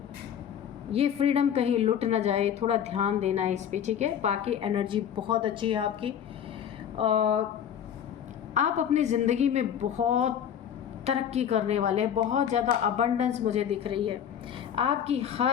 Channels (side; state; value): right; quieter; 9.1 dB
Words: कहीं लुट ना जाए। थोड़ा ध्यान देना है इस पे, ठीक है। बाकी एनर्जी बहुत अच्छी है आपकी। आप अपनी ज़िंदगी में बहुत तरक्की करने वाले हैं, बहुत ज़्यादा अबंडेंस मुझे दिख रही है। आपकी